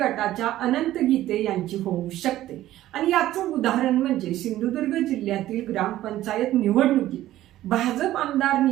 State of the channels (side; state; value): left; quieter; 14.2 dB